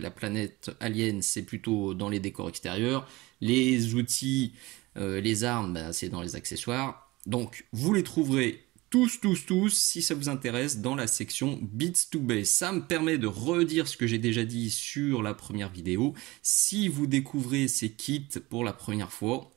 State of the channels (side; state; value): left; quieter; 21.3 dB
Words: planète Alien, c'est plutôt dans les décors extérieurs. Les outils, les armes, bah, c'est dans les accessoires. Donc, vous les trouverez tous, si ça vous intéresse, dans la section Beats to Base. Ça me permet de redire ce que j'ai déjà dit sur la première vidéo. Si vous découvrez ces kits pour la première fois,